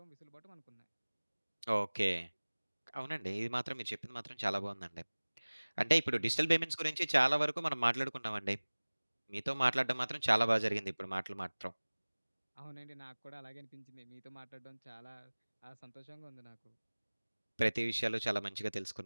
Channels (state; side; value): inverted; both; correlation -1.00